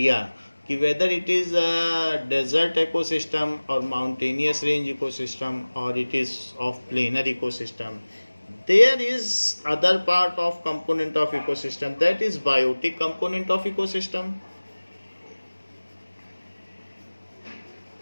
कि whether it is desert ecosystem और माउंटेनियस रेंज इकोसिस्टम और it is of planar ecosystem. There is other part of component of ecosystem, that is biotic component of ecosystem.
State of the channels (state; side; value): inverted; both; correlation -1.00